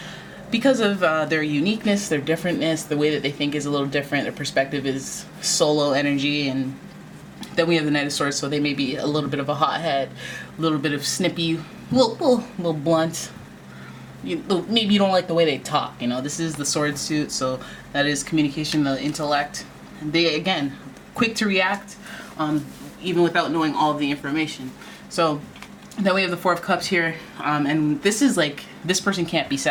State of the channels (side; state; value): both; identical; correlation 1.00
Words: because of their uniqueness, their differentness, the way that they think is a little different. Their perspective is solo energy. And then we have the Knight of Swords, so they may be a little bit of a hothead, a little bit of snippy, little blunt. Maybe you don't like the way they talk. This is the sword suit, so that is communication, the intellect. They, again, quick to react, even without knowing all of the information. So then we have the Four of Cups here, and this is like, this person can't be